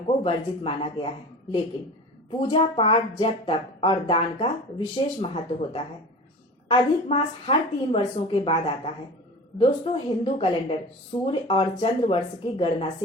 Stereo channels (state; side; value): normal; both; correlation 0.35